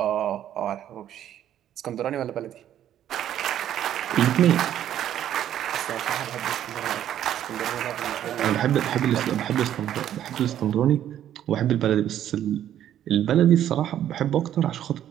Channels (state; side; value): quieter; left; 11.1 dB